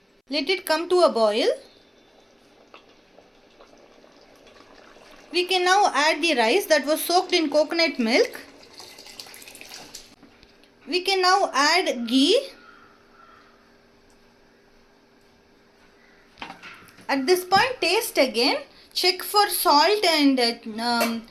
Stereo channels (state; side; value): identical; both; correlation 1.00